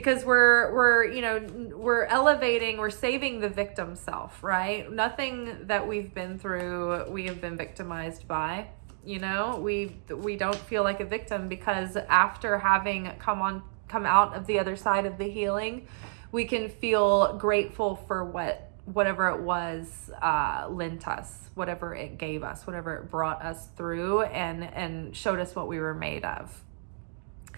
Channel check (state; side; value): silent; left; digital silence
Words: we're elevating, we're saving the victim self, right? Nothing that we've been through, we have been victimized by. We don't feel like a victim because after having come out of the other side of the healing, we can feel grateful for whatever it was lent us, whatever it gave us, whatever it brought us through and showed us what we were made of.